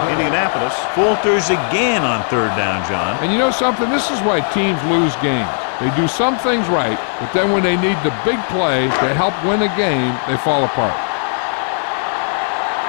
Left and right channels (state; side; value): silent; right; 66 dB below the other